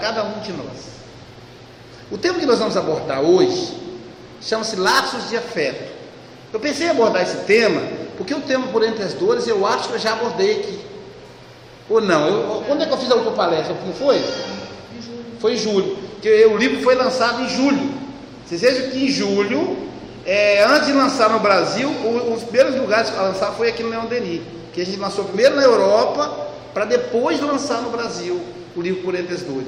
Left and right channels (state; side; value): identical; both; correlation 1.00